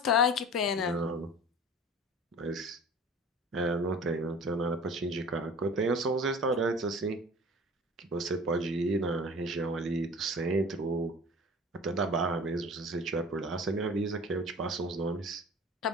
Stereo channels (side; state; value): both; normal; correlation 0.41